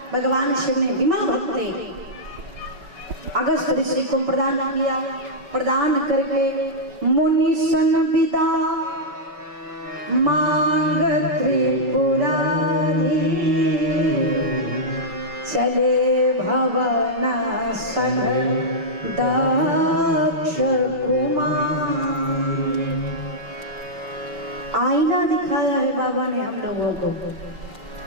भगवान शिव ने विमल भक्ति अगस्त्य ऋषि को प्रदान किया। प्रदान करके मुनि सन विदा मांग त्रिपुरारी, चले भवन सन दक्ष कुमार। आईना दिखाया है बाबा ने हम लोगों को,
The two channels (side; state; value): left; late; 5.3 ms